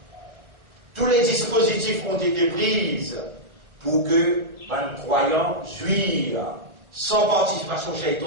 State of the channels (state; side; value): late; left; 1.3 ms